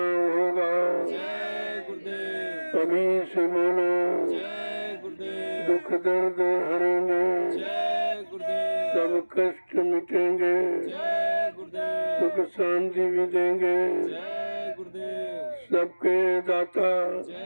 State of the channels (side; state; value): both; inverted; correlation -1.00